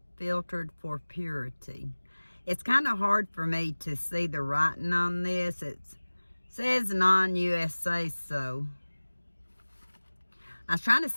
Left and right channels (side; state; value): both; inverted; correlation -1.00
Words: filtered for purity. It's kind of hard for me to see the writing on this. It says non-USA, so I was trying to